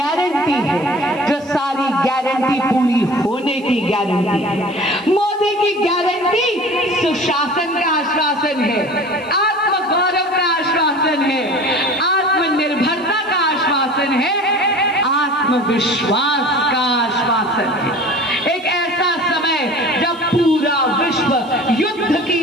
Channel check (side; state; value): right; noise; hiss, 29 dB below the sound